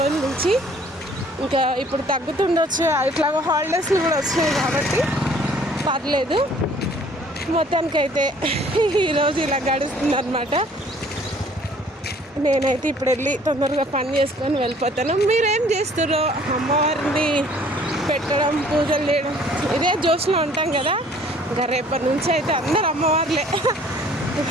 నుంచి. ఇంకా ఇప్పుడు తగ్గుతుండొచ్చు, ఇట్లాగో హాలిడేస్లు కూడా వచ్చినాయి కాబట్టి పర్లేదు. మొత్తానికైతే ఈరోజు ఇలా గడుస్తుంది అనమాట. నేనైతే ఇప్పుడు వెళ్ళి తొందరగా పని చేసుకొని వెళ్ళిపోతాను. మీరేం చేస్తారో, అమ్మవారిని పెట్టడం, పూజలు చేయడం, ఇదే జోష్లో ఉంటాం కదా. ఇంకా రేపటి నుంచి అయితే అందరు అమ్మవార్లే.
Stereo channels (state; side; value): normal; both; correlation 0.56